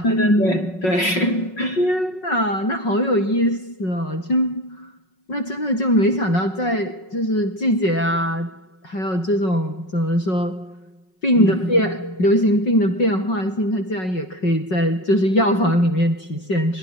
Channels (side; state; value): right; late; 5.4 ms